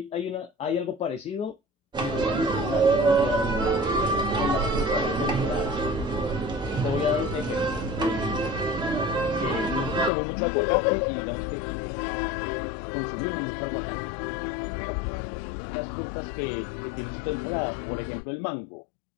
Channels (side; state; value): right; drops out; at 10.1 s